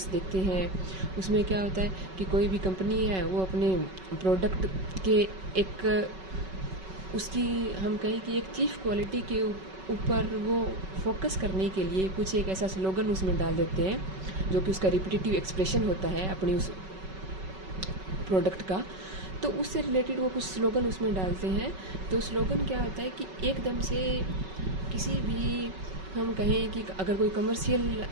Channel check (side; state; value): left; late; 5.3 ms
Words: देखते हैं, उसमें क्या होता है कि कोई भी कंपनी है वो अपने प्रोडक्ट के एक उसकी हम कहें कि एक चीफ क्वालिटी के ऊपर वो फोकस करने के लिए कुछ एक ऐसा स्लोगन उसमें डाल देते हैं जो कि उसका रिपीटेटिव एक्सप्रेशन होता है अपनी उस प्रोडक्ट का। तो उससे रिलेटेड वो कुछ स्लोगन उसमें डालते हैं। तो स्लोगन क्या होता है कि एकदम से किसी भी हम कहें कि अगर कोई कमर्शियल